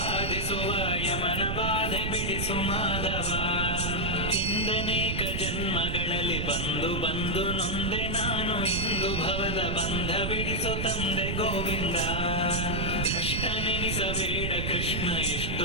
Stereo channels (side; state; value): right; noise; rumble, 1 dB below the sound